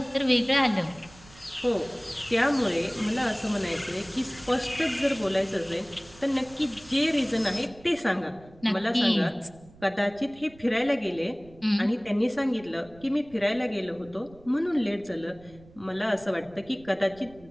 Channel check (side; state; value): right; noise; rumble, 23 dB below the sound